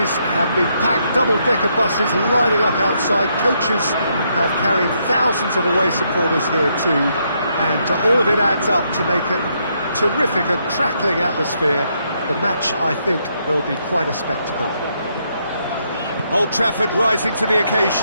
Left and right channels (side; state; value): both; inverted; correlation -0.76